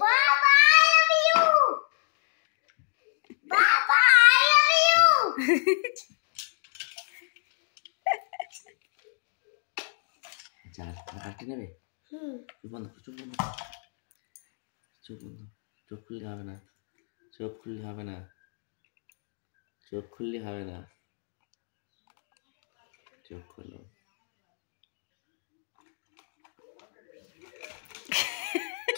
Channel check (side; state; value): right; silent; digital silence